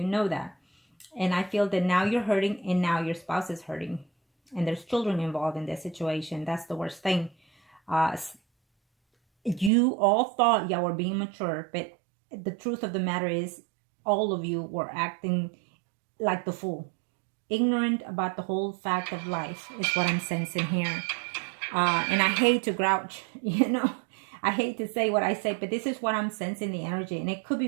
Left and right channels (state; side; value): drops out; left; at 9.7 s